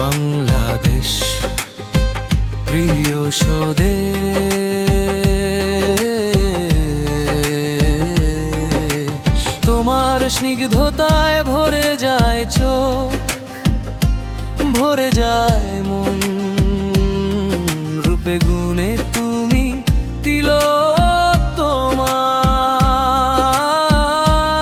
প্রিয় স্বদেশ। তোমার স্নিগ্ধতায় ভরে যায় চোখ, ভরে যায় মন, রূপে গুণে তুমি তিলক তোমার।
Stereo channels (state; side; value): identical; both; correlation 1.00